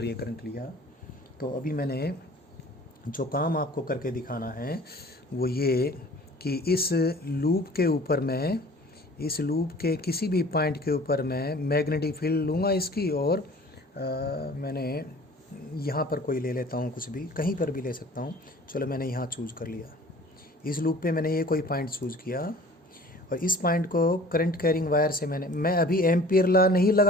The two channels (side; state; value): both; normal; correlation 0.47